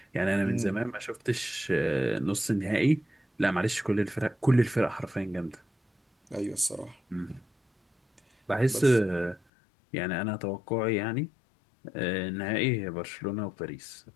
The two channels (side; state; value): right; drops out; at 9.4 s